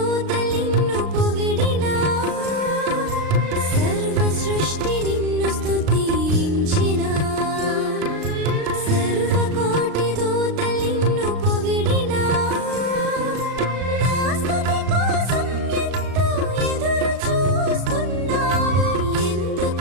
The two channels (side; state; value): left; late; 36 ms